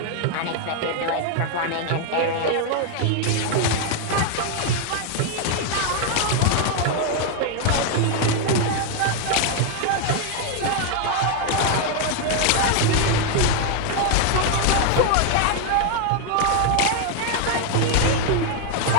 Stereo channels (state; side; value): different; both; correlation 0.01